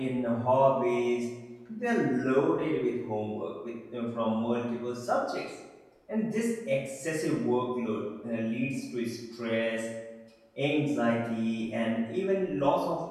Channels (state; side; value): identical; both; correlation 1.00